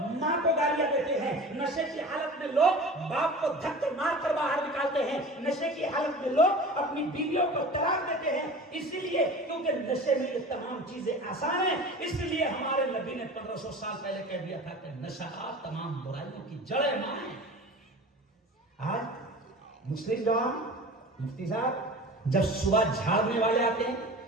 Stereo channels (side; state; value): both; normal; correlation 0.38